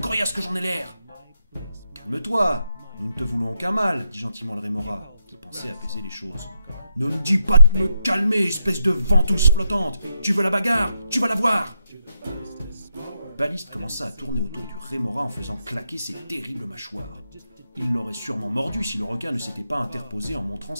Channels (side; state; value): both; inverted; correlation -0.81